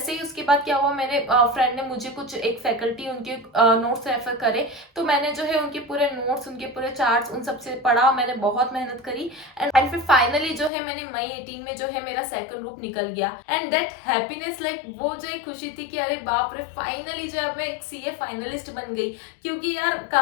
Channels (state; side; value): drops out; right; at 10.7 s